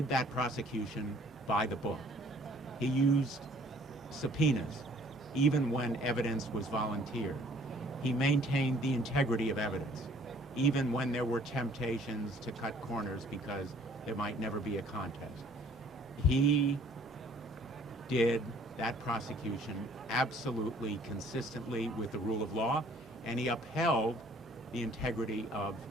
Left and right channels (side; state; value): both; normal; correlation 0.57